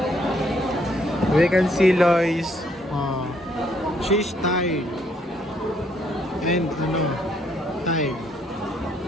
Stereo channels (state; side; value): normal; both; correlation 0.69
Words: We can see Lois. She's tired. And tired.